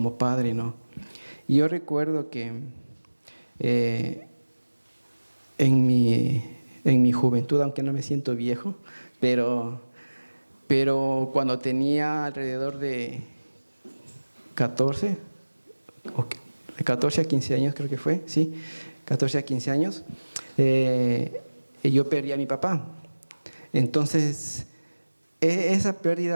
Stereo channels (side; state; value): both; inverted; correlation -1.00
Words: Padre, ¿no? Y yo recuerdo que en mi juventud, aunque no me siento viejo, pero cuando tenía alrededor de 14 a 15 años, creo que fue, sí, 14 a 15 años, yo perdí a mi papá. Entonces, esa